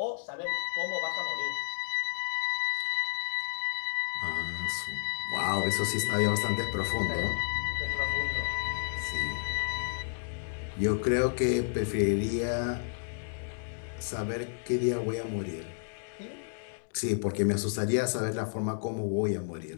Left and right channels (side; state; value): right; silent; digital silence